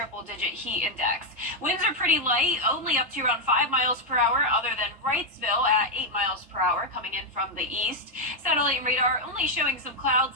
heat index. Winds are pretty light, only up to around 5 miles per hour, other than Wrightsville at 8 miles per hour coming in from the east. Satellite radar only showing some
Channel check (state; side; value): normal; both; correlation 0.01